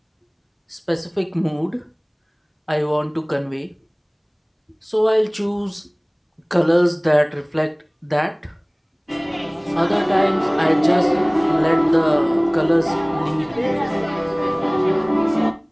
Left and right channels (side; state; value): both; identical; correlation 1.00